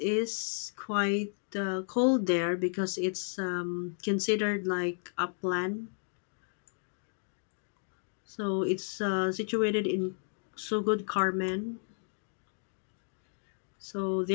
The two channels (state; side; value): silent; right; digital silence